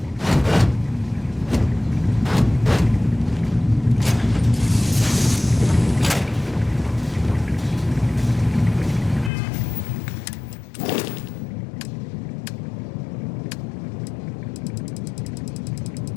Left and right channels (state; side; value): drops out; right; at 9.3 s